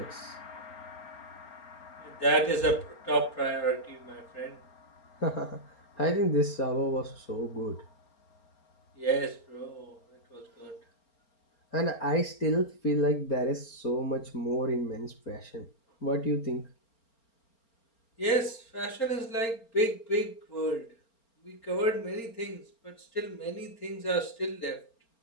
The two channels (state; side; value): late; right; 4.4 ms